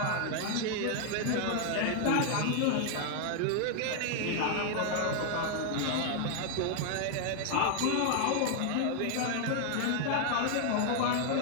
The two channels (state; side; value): different; both; correlation 0.00